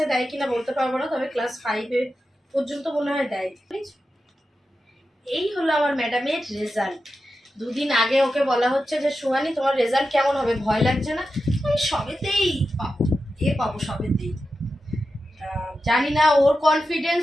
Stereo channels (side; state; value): both; normal; correlation 0.91